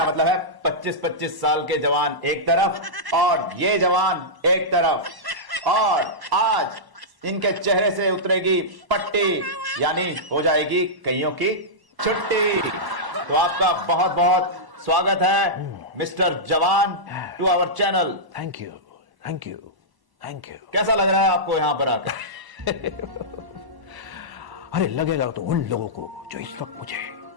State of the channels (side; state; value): left; late; 1.0 ms